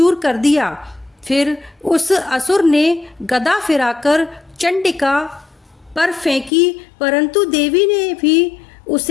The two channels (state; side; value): drops out; right; at 6.5 s